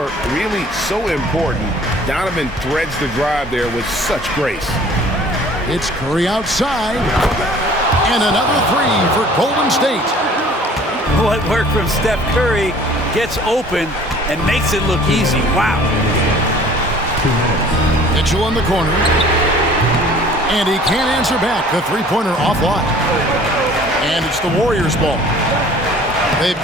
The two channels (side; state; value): both; normal; correlation 0.51